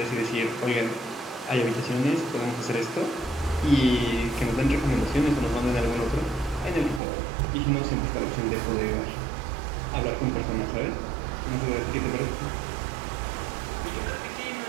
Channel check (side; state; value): left; drops out; at 7.0 s